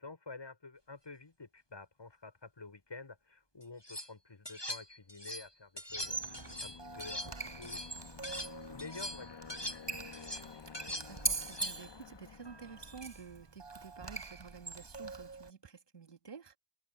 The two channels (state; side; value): late; right; 1.2 ms